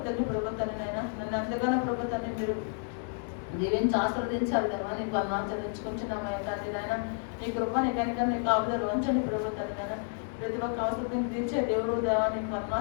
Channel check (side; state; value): right; silent; 57 dB below the other